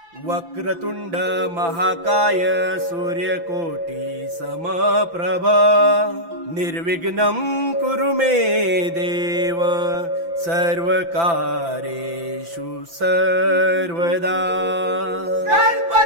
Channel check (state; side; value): late; left; 5.9 ms